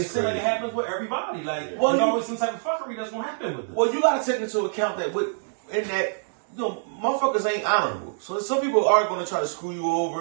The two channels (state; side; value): silent; left; digital silence